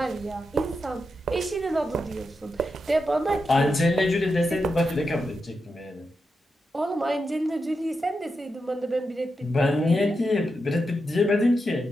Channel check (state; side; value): normal; both; correlation 0.87